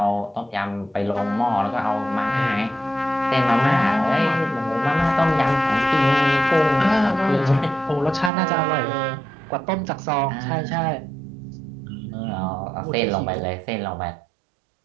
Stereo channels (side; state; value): left; drops out; at 8.3 s